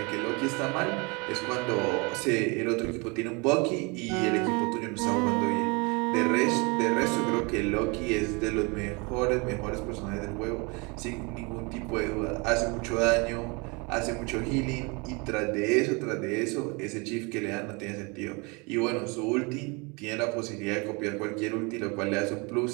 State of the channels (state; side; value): quieter; left; 29.4 dB